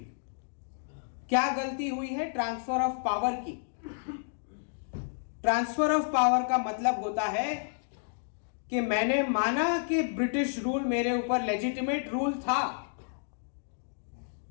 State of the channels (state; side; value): silent; right; digital silence